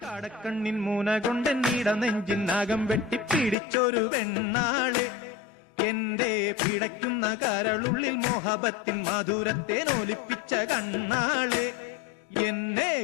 കടക്കണ്ണിൻ മൂന കൊണ്ട് നീട നെഞ്ചിനാകം വെട്ടിപ്പിടിച്ചൊരു വെണ്ണാള് എന്റെ പിടയ്ക്കുന്ന കരളുള്ളിൽ മോഹബത്തിൻ മധുരത്തെ നോലിപ്പിച്ച കണ്ണാള് എന്നെ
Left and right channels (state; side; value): drops out; right; at 3.6 s